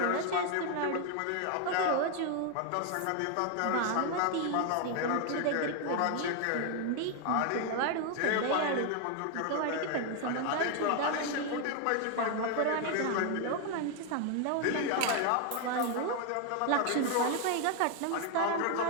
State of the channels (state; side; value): different; both; correlation 0.01